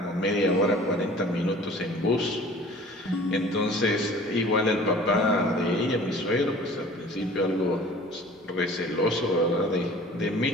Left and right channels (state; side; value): normal; both; correlation 0.47